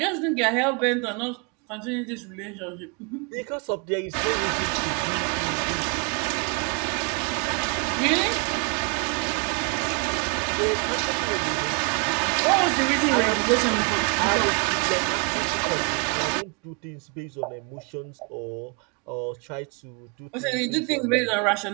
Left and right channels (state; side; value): quieter; left; 34.6 dB